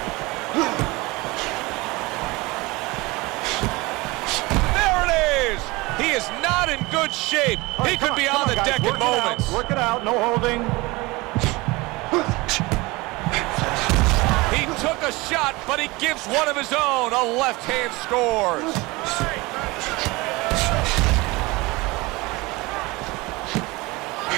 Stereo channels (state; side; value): quieter; left; 23.0 dB